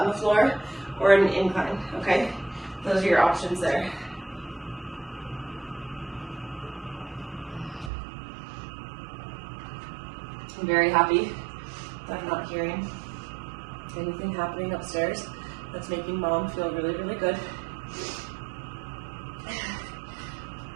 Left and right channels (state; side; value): drops out; left; at 7.9 s